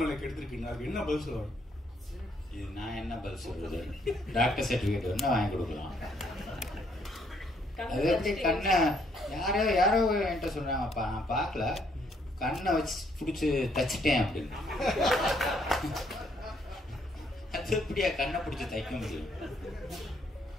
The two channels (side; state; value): both; normal; correlation 0.69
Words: எடுத்திருக்கீங்க. அதுக்கு என்ன பதில் சொல்லுவாங்க? இது நான் என்ன பதில் சொல்றது? டாக்டர் சர்டிபிகேட் வேணா வாங்கி கொடுக்கலாம். அது எப்படி கண்ணை யாரோ என்கிட்ட சொன்னாங்கப்பா, நான் பார்க்கல, கண்ணை வச்சு பிடிச்சி தச்சிட்டேன் அப்படின்னு. அது எப்படியா கண்ணை பிடிச்சி தைக்க முடியும்?